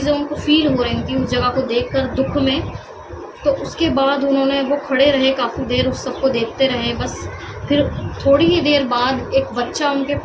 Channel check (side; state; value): both; identical; correlation 1.00